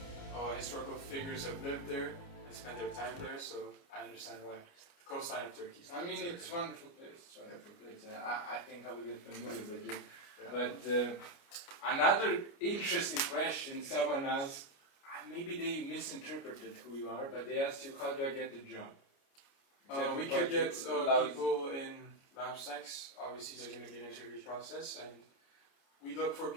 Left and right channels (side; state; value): right; late; 29 ms